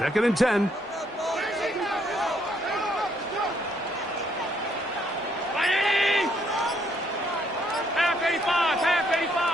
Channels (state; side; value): normal; both; correlation 0.70